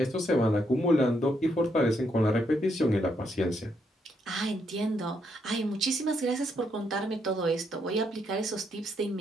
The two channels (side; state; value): both; normal; correlation 0.76